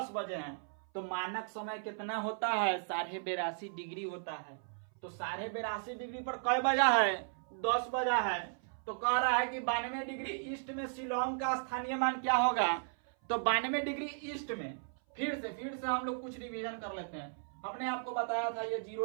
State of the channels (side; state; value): left; silent; 54 dB below the other